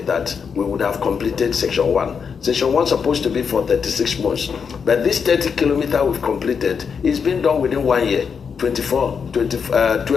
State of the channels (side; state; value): right; quieter; 6.3 dB